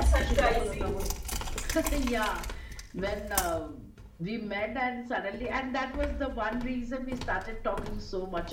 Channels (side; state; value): both; identical; correlation 1.00